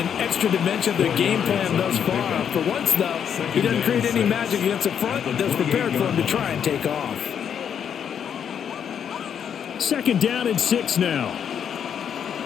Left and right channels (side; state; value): right; quieter; 8.2 dB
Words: extra dimension of their game plan thus far. For once, though, he doesn't create any magic against the front that's prepared for him to try and take off. 2nd down and 6 now.